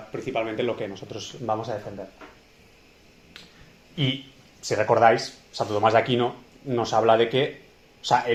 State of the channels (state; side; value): identical; both; correlation 1.00